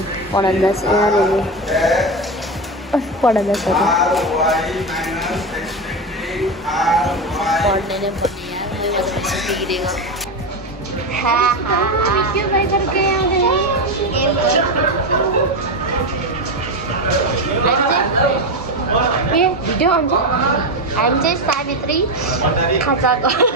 पढन्दास यहाँनिर पढन्दास पढ्ने नै पढ्ने भिडियो हुन्छ हामी चाहिँ सावित्री खाजा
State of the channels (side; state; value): both; normal; correlation 0.15